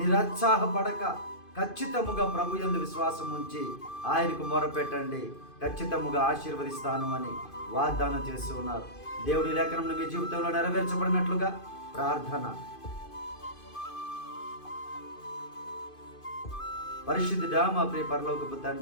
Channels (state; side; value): late; right; 2.5 ms